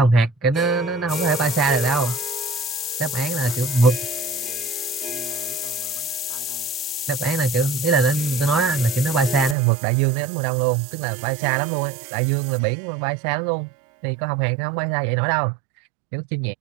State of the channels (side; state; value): left; drops out; at 9.6 s